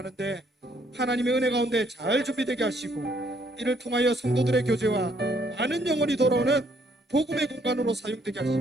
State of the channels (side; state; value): both; normal; correlation 0.68